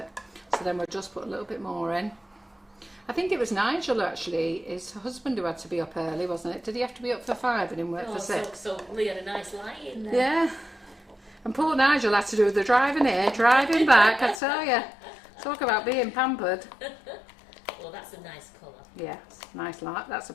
So then we'll just put a little bit more in. I think it was Nigel, actually, his husband, who had to be up early, wasn't it? Did he have to be up for 5 and him work for 6? So Lee had a nice lie in there. Yeah. And poor Nigel had to do the driving here, driving back, I tell you. Talk about being pampered. colour. That's a nice colour. Yeah, nice light. That's a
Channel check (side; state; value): right; drops out; at 14.4 s